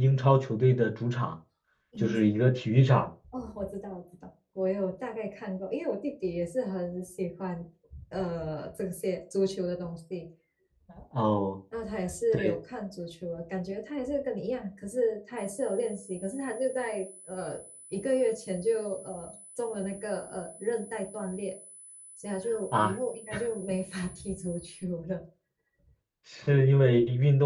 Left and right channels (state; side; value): identical; both; correlation 1.00